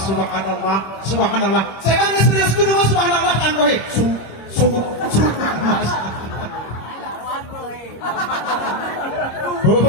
subhanallah, subhanallah. Saya kan serius kudu subhanallah kan rohi.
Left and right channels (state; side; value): late; right; 26 ms